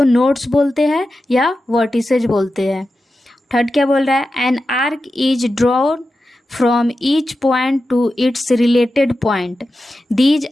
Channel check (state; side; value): normal; both; correlation 0.91